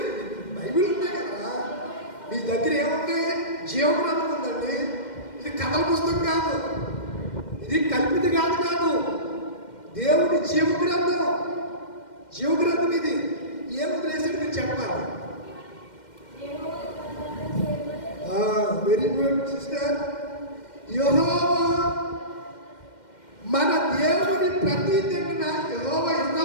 బైబిల్ ఉంటాయి కదా మీ దగ్గర. ఏముంది? జీవగ్రంథం ఉందండి. ఇది కథల పుస్తకం కాదు, ఇది కల్పిత కాదు. దేవుడి జీవగ్రంథం ఇది. ఏం వదిలేసాడు మీరు చెప్పాలి. Very good sister. యెహోవా మన దేవుని ప్రతి దిన యెహోవా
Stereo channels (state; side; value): late; right; 2.1 ms